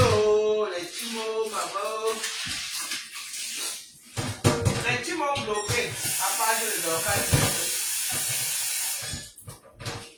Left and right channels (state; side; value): identical; both; correlation 1.00